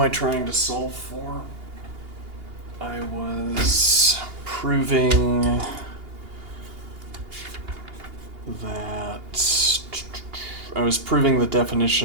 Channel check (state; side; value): late; left; 2.8 ms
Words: trying to solve for? I was proving that... I was proving the